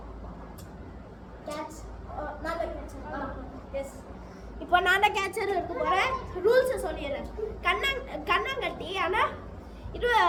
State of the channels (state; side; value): identical; both; correlation 1.00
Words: Catch. நான் தான் கேட்சர். எஸ். இப்போ நான் தான் கேட்சர் எடுத்து போறேன். ரூல்ஸ் சொல்லிடுறேன். கண்ணாங்கட்டி ஆனா இது